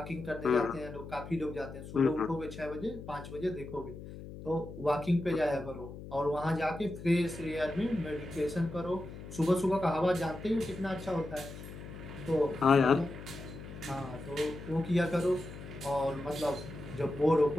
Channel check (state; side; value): noise; left; hum, 12 dB below the sound